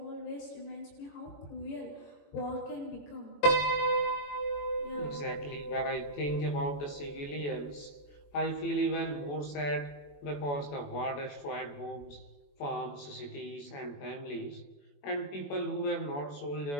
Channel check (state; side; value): late; right; 21 ms